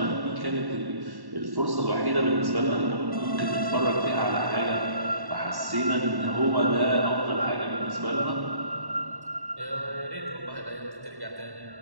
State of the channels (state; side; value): late; left; 1.1 ms